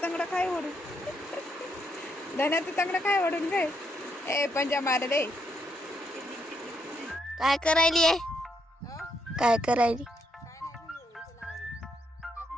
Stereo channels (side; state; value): both; normal; correlation 0.76